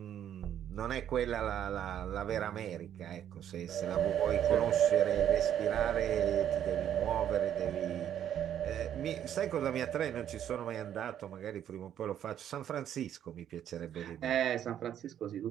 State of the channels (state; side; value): quieter; left; 10.2 dB